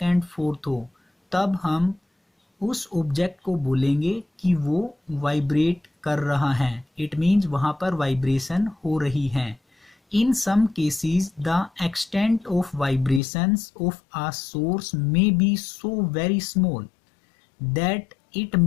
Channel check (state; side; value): drops out; right; at 13.2 s